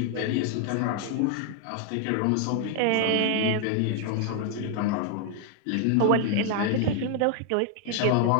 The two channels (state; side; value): different; both; correlation 0.00